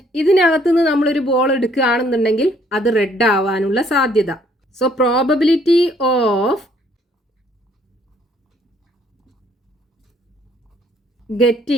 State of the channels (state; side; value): normal; both; correlation 0.64